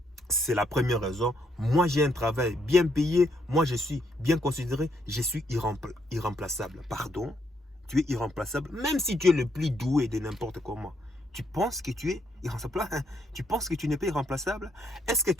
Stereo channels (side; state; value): both; normal; correlation 0.74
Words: C'est la première raison. Moi, j'ai un travail bien payé. Moi, je suis bien considéré. Je suis irremplaçable. Pardon? Tu es irremplaçable. Même si tu es le plus doué de n'importe comment. Tu penses que tu es irremplaçable? Tu penses que tu n'es pas irremplaçable? Est-ce que